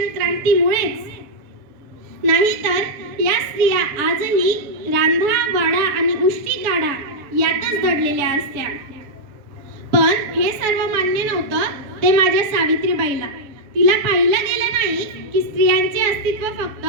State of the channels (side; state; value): left; late; 7.0 ms